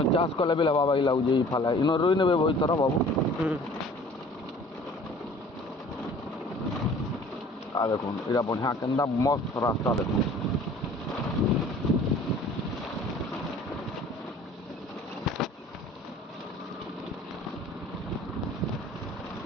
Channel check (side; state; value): both; normal; correlation 0.49